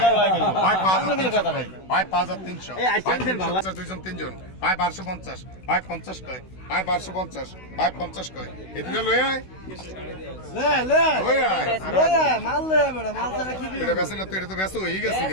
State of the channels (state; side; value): late; right; 16 ms